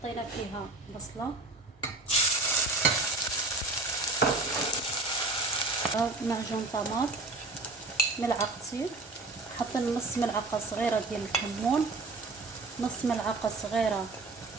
فيها بصلة، معجون طماط ملعقتين، حطينا نص ملعقة صغيرة ديال الكمون، نص ملعقة صغيرة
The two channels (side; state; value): left; quieter; 3.3 dB